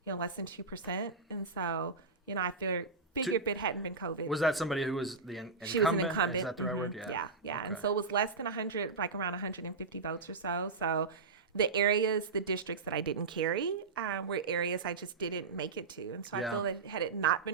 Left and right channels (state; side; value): quieter; left; 4.5 dB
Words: less than 2%. And so, I figured if it hadn't been COVID. Was that somebody who was the incumbent? She was an incumbent. Is that the right word? Yeah. Yeah. Okay. And so it was less than 100, like around 150 votes or so. So the districts that I didn't carry were areas I just didn't make it to. And so I feel that had it not